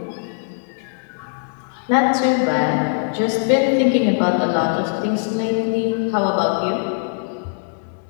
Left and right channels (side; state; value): right; silent; 65 dB below the other